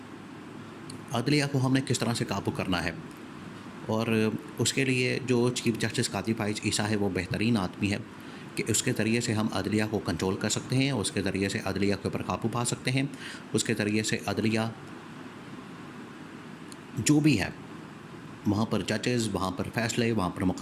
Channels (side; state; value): both; identical; correlation 1.00